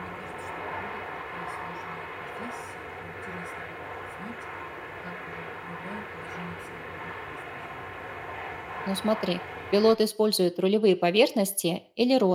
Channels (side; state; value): both; identical; correlation 1.00